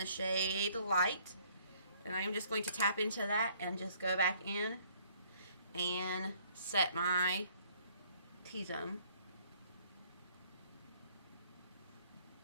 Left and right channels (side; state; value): both; inverted; correlation -0.61